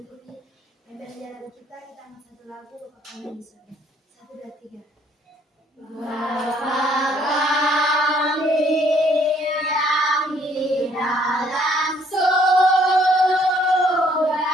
pembelajaran kita angkat satu lagu Bapak kami di surga. 1, 2, 3. Bapa kami yang di dalam surga,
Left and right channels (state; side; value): normal; both; correlation 0.64